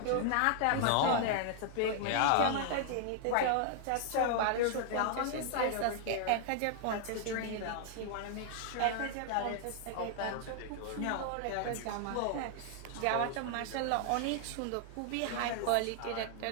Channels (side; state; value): both; different; correlation -0.01